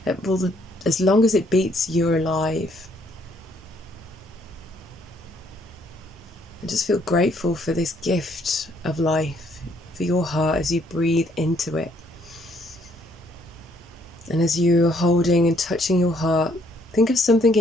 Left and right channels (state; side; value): normal; both; correlation 0.67